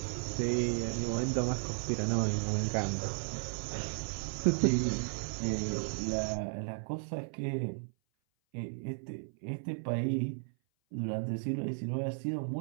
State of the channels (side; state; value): left; silent; 55 dB below the other